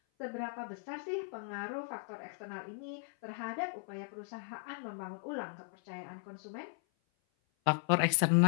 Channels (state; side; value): silent; right; 53 dB below the other